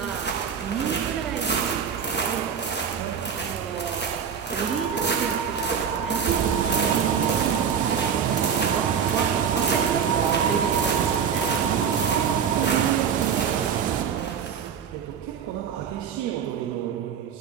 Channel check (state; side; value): quieter; left; 7.4 dB